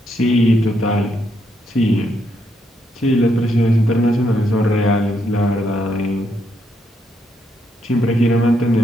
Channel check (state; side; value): normal; both; correlation 0.77